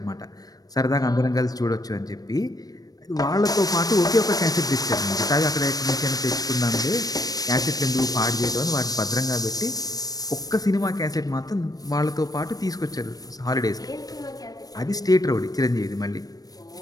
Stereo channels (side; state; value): right; late; 0.18 ms